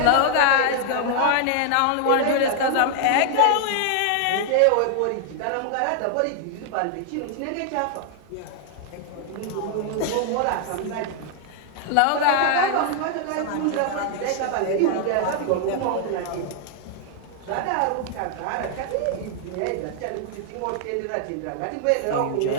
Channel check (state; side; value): different; both; correlation 0.00